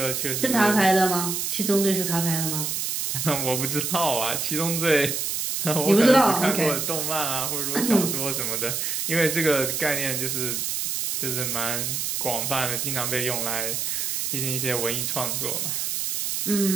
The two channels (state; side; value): noise; right; hiss, 1 dB below the sound